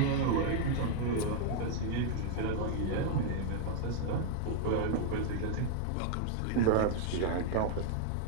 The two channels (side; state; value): both; different; correlation -0.01